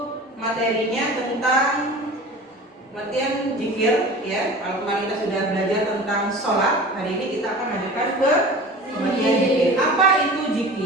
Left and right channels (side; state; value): both; normal; correlation 0.38